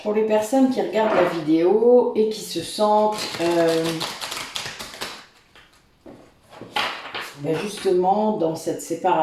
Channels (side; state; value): both; identical; correlation 1.00